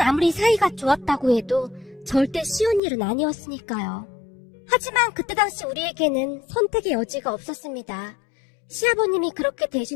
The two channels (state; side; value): drops out; right; at 2.8 s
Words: 아무리 사이가 좋았다고 해도 절대 쉬운 일은 아니었으니까요. 하지만 그때 당시 우리에게는 선택의 여지가 없었습니다. 시아버님이 그렇게